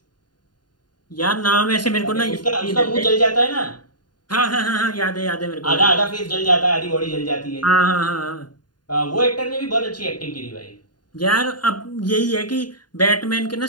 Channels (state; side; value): late; right; 0.70 ms